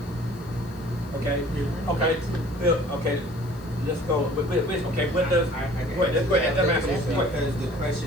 Okay. Okay. Bill, okay. let's go. Okay, what does? I get Go ahead. Let's go ahead. Let me ask you It's one question. Because the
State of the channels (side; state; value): left; noise; hiss, 26 dB below the sound